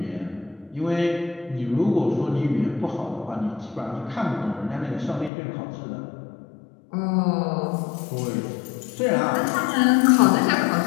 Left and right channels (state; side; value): drops out; right; at 5.3 s